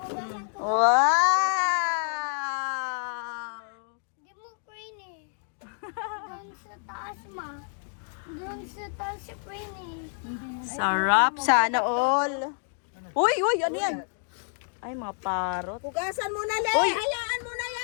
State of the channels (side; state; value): right; silent; 57 dB below the other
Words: Wow! Di mo crane eh. Doon sa taas ma. Doon sa taas si crane eh. Sarap. Sana all. Uy, ano yan? Ay, mga parot. Hugasan mo na, Le. Uy! Hayaan mo na